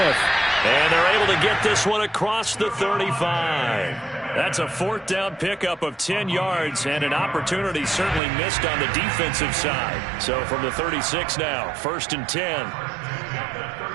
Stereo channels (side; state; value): left; drops out; at 8.2 s